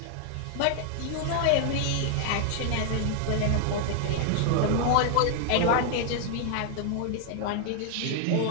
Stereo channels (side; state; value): both; different; correlation 0.00